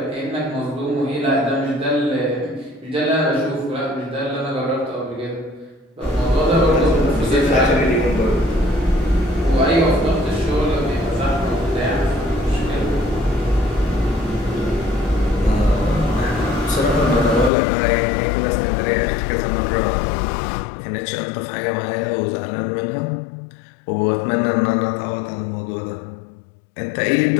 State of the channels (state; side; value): drops out; right; at 17.5 s